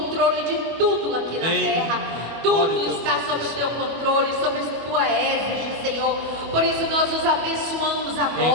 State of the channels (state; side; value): late; left; 25 ms